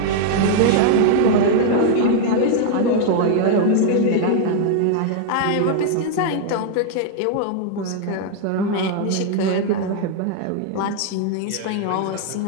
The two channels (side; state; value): both; different; correlation 0.00